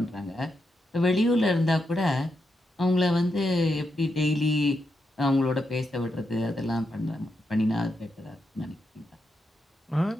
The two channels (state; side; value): normal; both; correlation 0.84